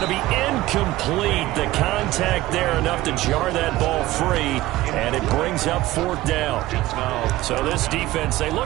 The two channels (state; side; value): quieter; left; 16.8 dB